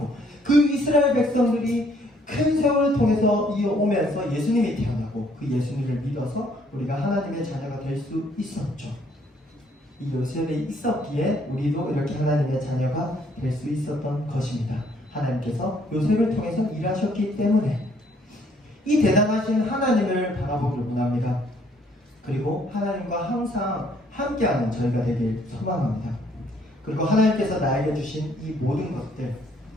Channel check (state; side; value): normal; both; correlation 0.65